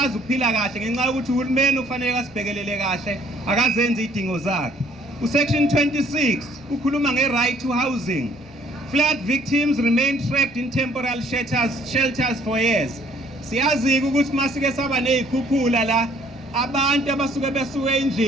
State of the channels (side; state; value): right; noise; rumble, 28 dB below the sound